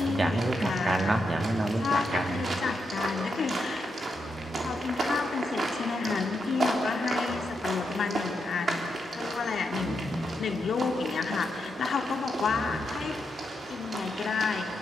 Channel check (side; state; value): both; normal; correlation 0.83